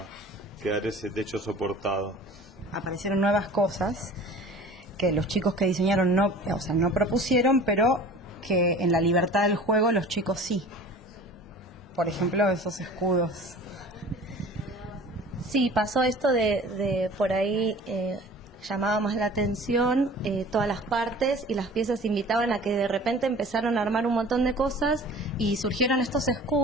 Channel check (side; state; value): both; normal; correlation 0.43